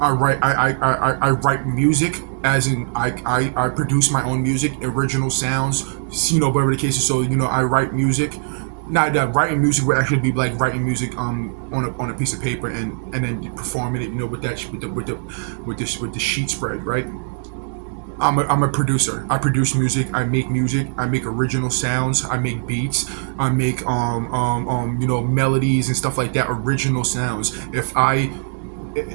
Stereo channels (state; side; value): silent; left; digital silence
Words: I write music. As in, I produce my own music, original sounds. Whatever the case is. So I write music. Now that writing music would actually be like writing music on a piece of paper and then performing it, with the sheet spread, right? I'm a producer. I produce music. I make original sounds. I make beats. I make melodies and stuff like that. Original sounds.